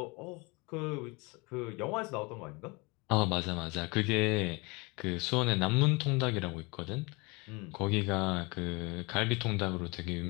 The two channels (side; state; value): right; quieter; 27.4 dB